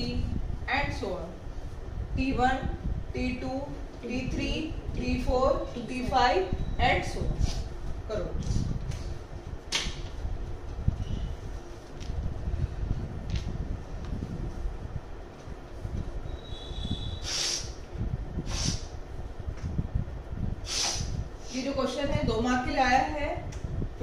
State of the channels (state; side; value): identical; both; correlation 1.00